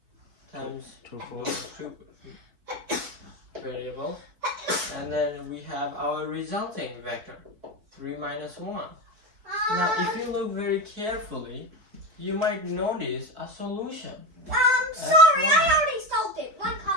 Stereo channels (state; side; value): late; left; 4.5 ms